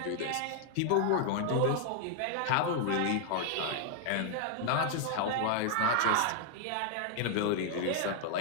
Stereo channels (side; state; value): both; different; correlation 0.00